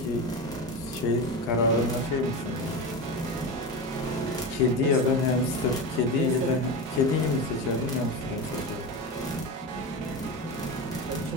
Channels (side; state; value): both; normal; correlation 0.22